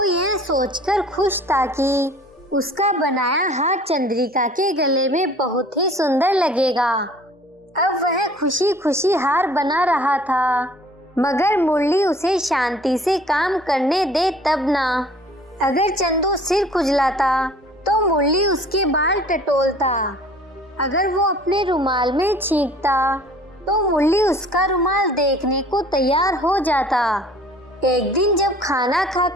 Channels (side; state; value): both; normal; correlation 0.51